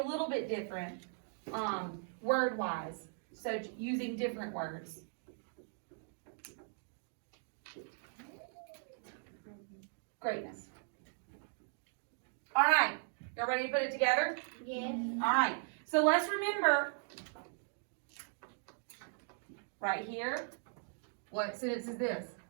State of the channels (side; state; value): left; silent; 52 dB below the other